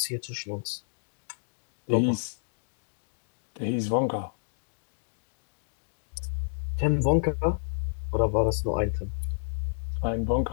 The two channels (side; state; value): right; silent; digital silence